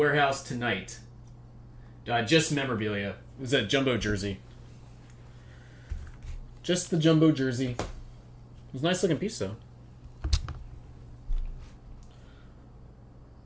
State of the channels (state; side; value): identical; both; correlation 1.00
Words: tonight. Just memorabilia. It was a jumbo jersey. Just the jumbo jersey. It was a nice looking piece, though.